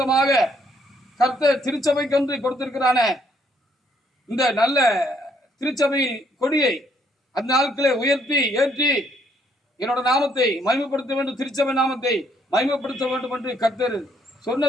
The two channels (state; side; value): normal; both; correlation 0.69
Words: கர்த்தர் திருச்சபைக்கென்று கொடுத்திருக்கிறான இந்த நல்ல திருச்சபை கொடியை அந்த நாட்களை உயர்த்தி ஏற்றி என்னோட நாமத்தை மகிமைப்படுத்த வேண்டும், திருச்சபை நாமத்தை மகிமைப்படுத்த வேண்டும் என்று கர்த்தர்